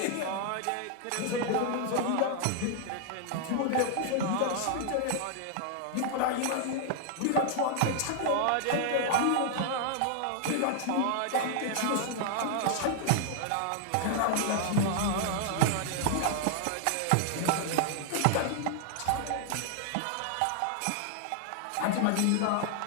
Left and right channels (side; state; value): both; different; correlation 0.00